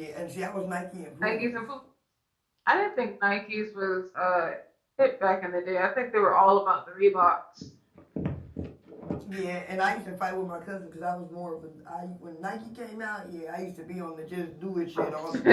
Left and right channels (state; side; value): identical; both; correlation 1.00